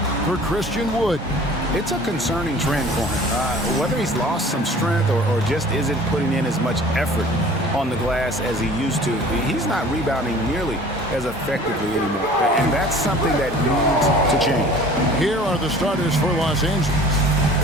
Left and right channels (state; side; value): normal; both; correlation 0.46